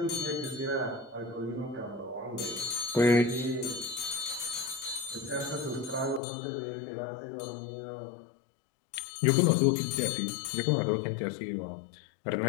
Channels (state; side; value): drops out; right; at 6.2 s